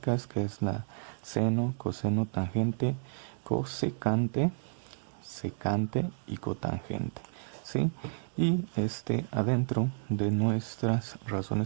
que es la seno, coseno, tangente, cosecante, secante y cotangente. ¿Sí? Y adentro de nuestras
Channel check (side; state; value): left; silent; digital silence